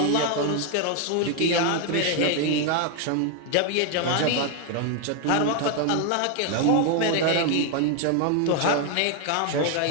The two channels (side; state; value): both; different; correlation 0.01